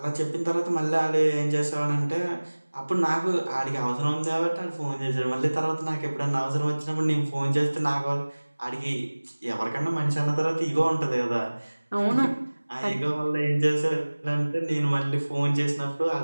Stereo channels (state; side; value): inverted; both; correlation -1.00